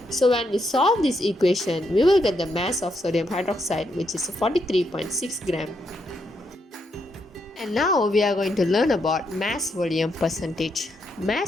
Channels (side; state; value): both; normal; correlation 0.79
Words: So when we solve this equation, we will get the mass of sodium hydroxide, which is 43.6 gram. And now we are going to learn about mass volume percentage.